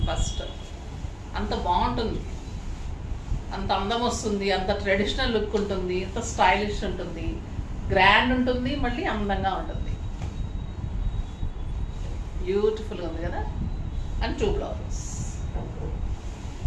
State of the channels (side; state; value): both; identical; correlation 1.00